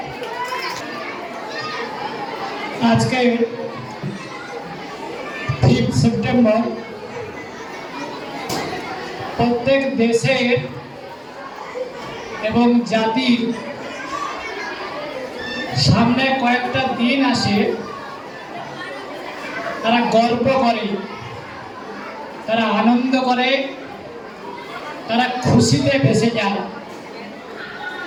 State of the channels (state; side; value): identical; both; correlation 1.00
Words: আজকে 5 সেপ্টেম্বর প্রত্যেক দেশের এবং জাতির সামনে কয়েকটা দিন আসে, তারা গর্ব করে, তারা আনন্দ করে, তারা খুশিতে ভেসে যায়।